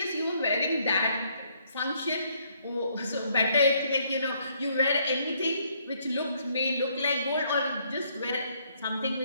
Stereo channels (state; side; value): inverted; both; correlation -0.69